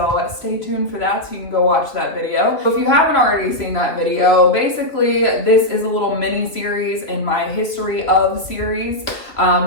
stay tuned for that so you can go watch that video. If you haven't already seen that video, basically this is a little mini series in my history of series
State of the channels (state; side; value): late; right; 2.8 ms